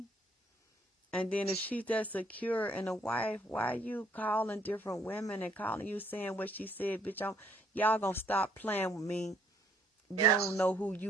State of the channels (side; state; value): both; normal; correlation 0.65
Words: And then if she's that secure and a wife, why are you calling different women and calling you saying what she said, bitch? Y'all gonna stop playing with me. You don't know who